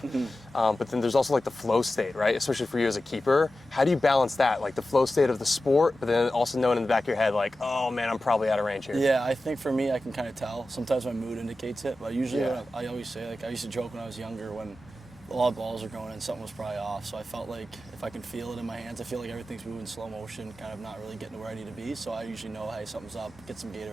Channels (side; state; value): both; normal; correlation 0.93